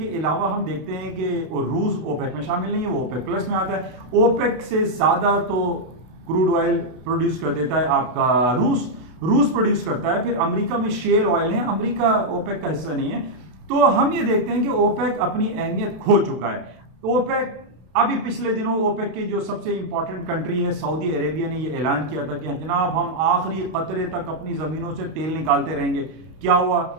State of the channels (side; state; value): left; late; 32 ms